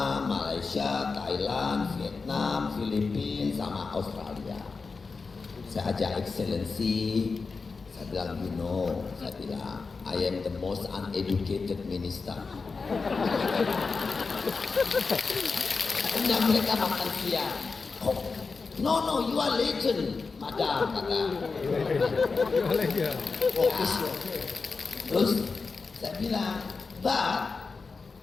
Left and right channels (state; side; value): quieter; right; 4.5 dB